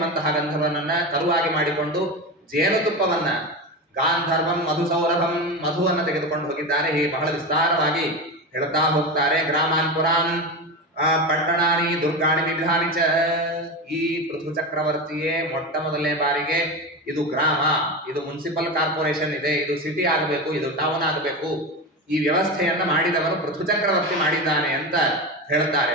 ಗಂಧರ್ವನನ್ನ ಕರುವಾಗಿ ಮಾಡಿಕೊಂಡು ಜೇನುತುಪ್ಪವನ್ನ, ಗಾಂಧರ್ವಂ ಮಧುಸೌರಭಂ, ಮಧುವನ್ನು ತೆಗೆದುಕೊಂಡು ಹೋಗಿದ್ದಾರೆ. ಹೀಗೆ ಬಹಳ ವಿಸ್ತಾರವಾಗಿ ಹೇಳ್ತಾ ಹೋಗ್ತಾರೆ. ಗ್ರಾಮಾನ್ ಪುರಾನ್ ಪಟ್ಟಣಾನಿ ದುರ್ಗಾಣಿ ವಿಧಾನಿ ಚ. ಈ ಪೃಥು ಚಕ್ರವರ್ತಿಯೇ ಮೊಟ್ಟ ಮೊದಲನೇ ಬಾರಿಗೆ ಇದು ಗ್ರಾಮ, ಇದು ಮುನ್ಸಿಪಲ್ ಕಾರ್ಪೊರೇಷನ್ ಇದೆ, ಇದು ಸಿಟಿ ಆಗಬೇಕು, ಇದು ಟೌನ್ ಆಗಬೇಕು, ಈ ವ್ಯವಸ್ಥೆಯನ್ನ ಮಾಡಿದವರು ಪೃಥು ಚಕ್ರವರ್ತಿ ಮಾಡಿದ್ದಾನೆ ಅಂತ ಹೇಳ್ತಾರೆ.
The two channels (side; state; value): both; normal; correlation 0.21